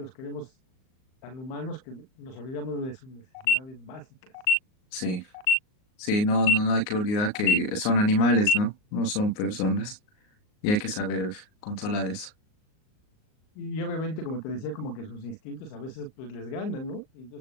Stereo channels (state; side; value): late; right; 38 ms